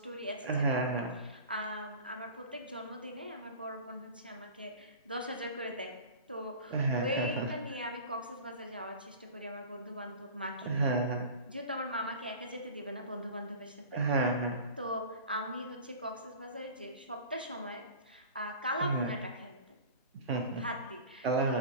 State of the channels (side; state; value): both; inverted; correlation -0.38